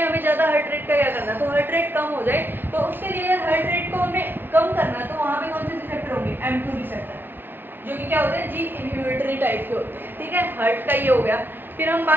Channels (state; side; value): late; left; 0.098 ms